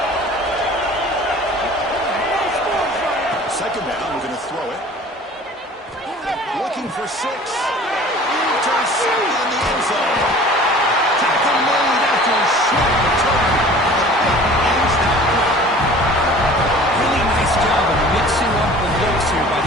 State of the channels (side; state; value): both; normal; correlation 0.46